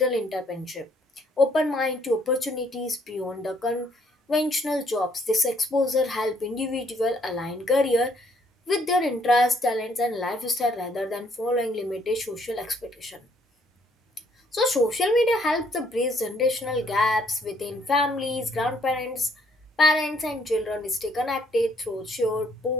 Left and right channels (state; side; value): normal; both; correlation 0.67